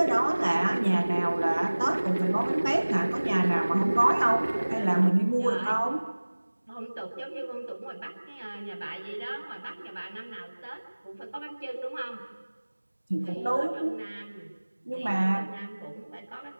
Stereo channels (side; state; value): both; inverted; correlation -1.00